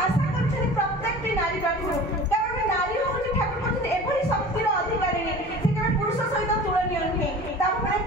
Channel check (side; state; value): both; normal; correlation 0.40